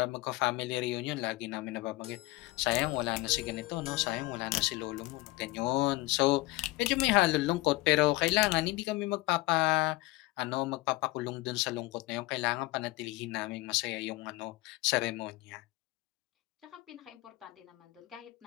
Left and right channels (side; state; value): right; quieter; 20.2 dB